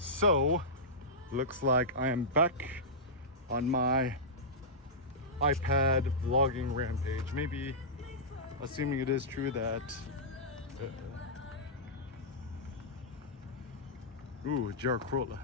looks like I am back on my iPad vlogging rampage. Maybe, assuming it is true that ooh, GR Corolla.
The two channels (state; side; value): normal; both; correlation -0.13